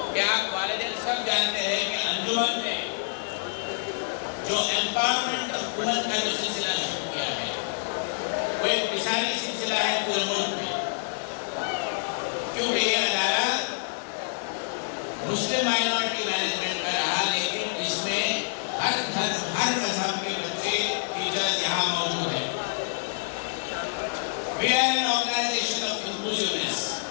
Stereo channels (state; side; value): silent; right; digital silence